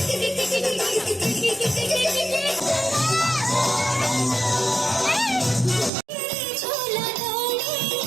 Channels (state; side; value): drops out; left; at 5.9 s